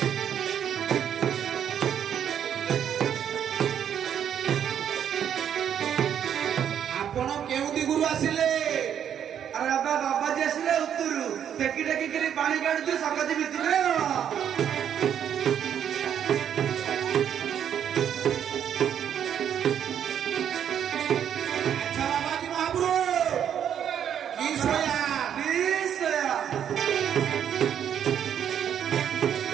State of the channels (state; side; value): quieter; left; 9.1 dB